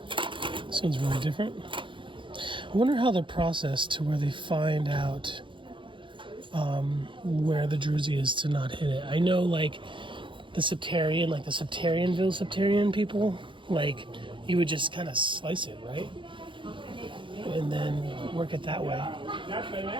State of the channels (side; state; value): left; late; 0.24 ms